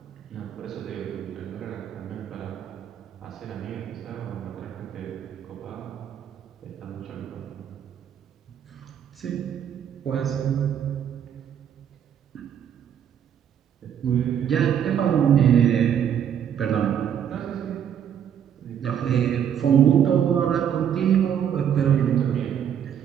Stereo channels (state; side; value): quieter; left; 9.0 dB